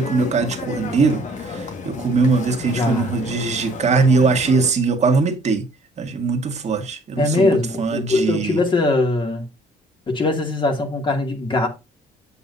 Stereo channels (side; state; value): both; normal; correlation 0.58